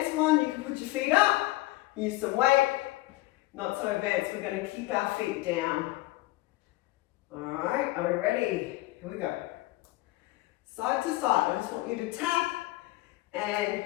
one, you can put your feet up, use some weight. Not so advanced, we're going to keep our feet down. All right, are we ready? Here we go. Side to side, I just want you to tap and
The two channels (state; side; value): quieter; right; 19.1 dB